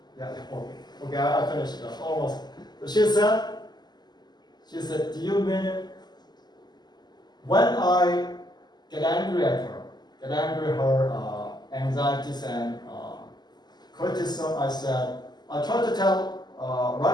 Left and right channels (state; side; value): late; right; 0.21 ms